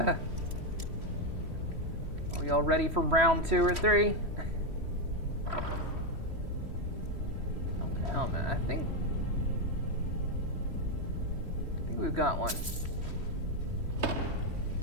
Are we all ready for round 2 or 3? Open helmet. I think we've got one.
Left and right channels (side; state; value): left; late; 3.1 ms